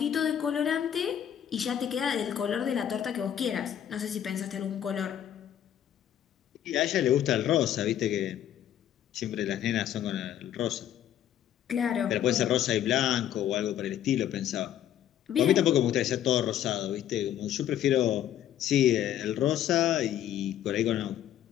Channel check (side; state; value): right; quieter; 10.8 dB